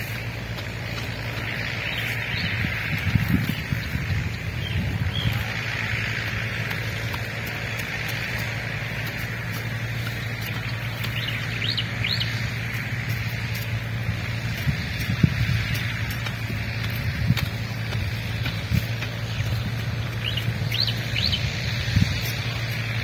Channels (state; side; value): identical; both; correlation 1.00